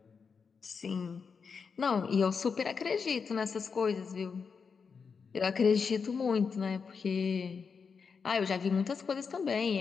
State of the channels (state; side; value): quieter; right; 5.6 dB